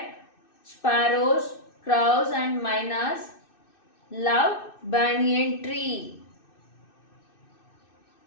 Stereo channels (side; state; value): right; late; 2.6 ms